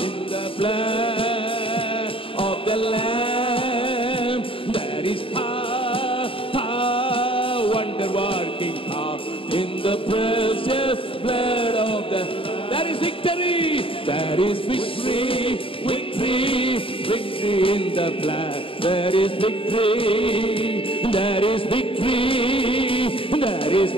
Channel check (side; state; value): right; late; 0.26 ms